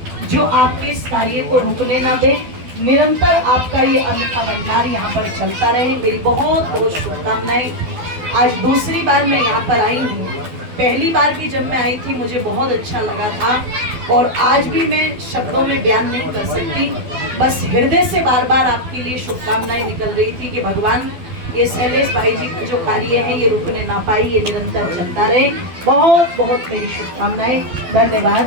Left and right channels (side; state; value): left; late; 12 ms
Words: जो आपके इस कार्य को रुकने ना दे। निरंतर आपका ये अन्न का भंडार यहाँ पर चलता रहे। मेरी बहुत बहुत शुभकामनाएं। आज दूसरी बार मैं यहाँ पर आई हूँ, पहली बार भी जब मैं आई थी मुझे बहुत अच्छा लगा था, और आज भी मैं शब्दों में बयान नहीं कर सकती, बस हृदय से बार बार आपके लिए शुभकामनाएं निकल रही थी कि भगवान ये शैलेश भाई जी का जो कार्य है ये रुकने ना पाई, ये निरंतर चलता रहे। बहुत बहुत मेरी शुभकामनाएं। धन्यवाद।